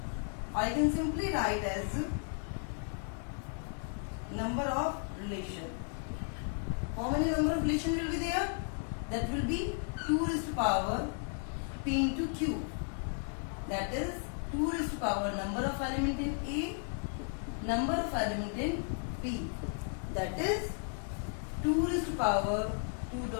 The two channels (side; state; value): right; silent; 55 dB below the other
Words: I can simply write as number of relation. How many number of relation will be there? That will be 2 raised to power P into Q. That is 2 raised to power number of element in A, number of element in B. That is 2 raised to power